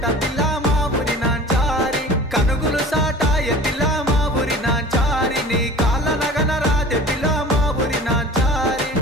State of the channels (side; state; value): both; normal; correlation 0.42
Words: పిల్ల మా ఊరి నాంచారి కనుగులు సాటాయ పిల్ల మా ఊరి నాంచారి నీ కాళ్ళ నగన రాదే పిల్ల మా ఊరి నాంచారి